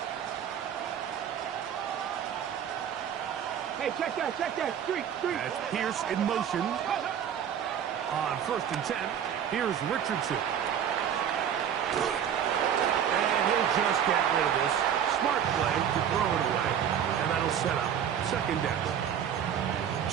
Hey, check that. Street. That's Pierce in motion. On first and 10, here's Richardson. And he'll just get rid of this. Smart play to throw it away. And that'll set up second down.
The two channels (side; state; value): left; quieter; 8.9 dB